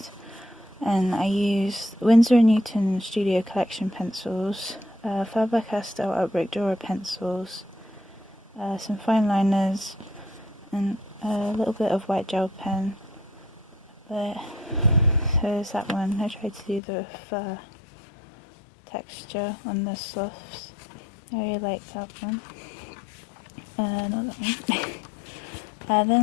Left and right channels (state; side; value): drops out; right; at 16.8 s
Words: and I used Winsor & Newton Studio Collection pencils, Faber-Castell Albrecht Dürer pencils, some fine liners, and a little bit of white gel pen. But so there's that one. I tried to do the fur texture on the sloths. I really like that one. Not that one.